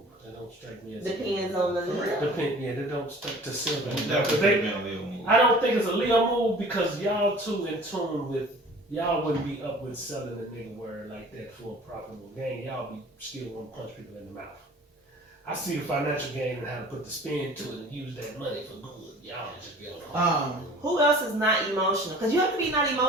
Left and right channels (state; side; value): normal; both; correlation 0.46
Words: That don't strike me as. Depends on the Leo. Yeah, they don't strike to silver. Definitely been a little move. I don't think it's a Leo move because y'all too in tune with, y'all wouldn't be up with selling a nigga word like that for a profitable gain. Y'all be still want to punch people in the mouth. I see the financial gain and how to put the spin to it and use that money for good. Y'all just be on. Who else is not emotional? Because you have to be not